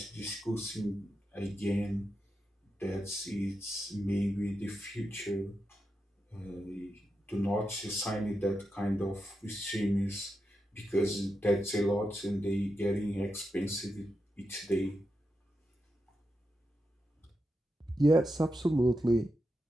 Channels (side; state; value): both; normal; correlation 0.87